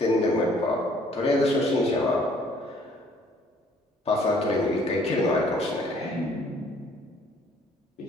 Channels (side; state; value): both; normal; correlation 0.60